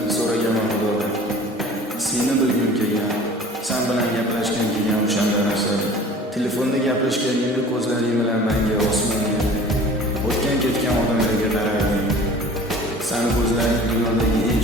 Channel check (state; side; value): normal; both; correlation 0.44